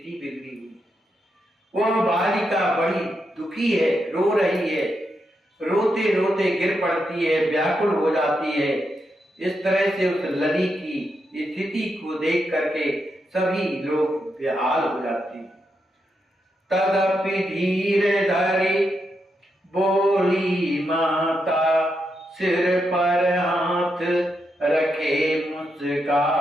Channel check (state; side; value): normal; both; correlation 0.83